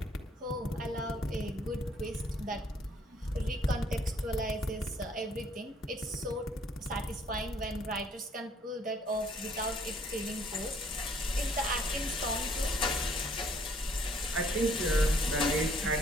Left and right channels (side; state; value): both; normal; correlation 0.63